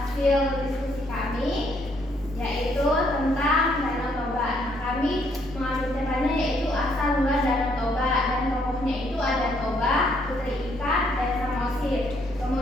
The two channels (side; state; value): right; noise; hum, 18 dB below the sound